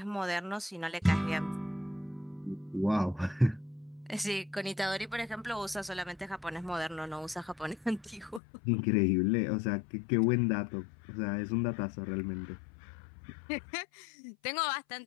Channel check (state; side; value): drops out; right; at 8.4 s